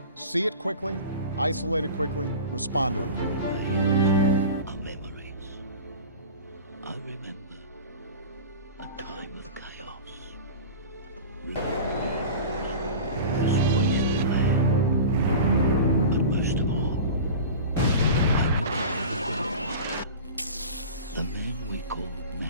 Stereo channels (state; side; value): inverted; both; correlation -0.34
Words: see it quickly, isolate it quickly, respond to it quickly. Our memories. I remember a time of chaos. But most of all, the man we called